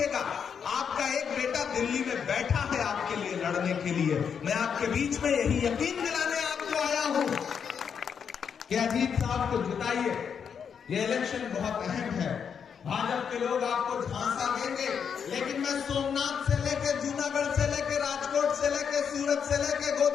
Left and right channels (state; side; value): quieter; right; 7.1 dB